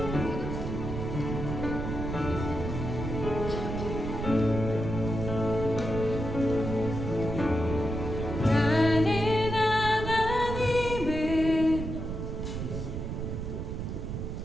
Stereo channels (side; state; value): right; noise; rumble, 4 dB below the sound